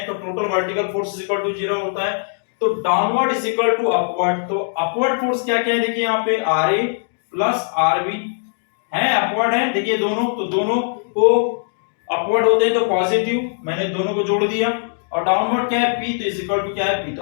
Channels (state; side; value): silent; right; digital silence